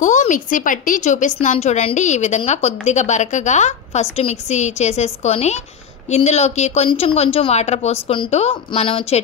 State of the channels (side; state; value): right; quieter; 7.3 dB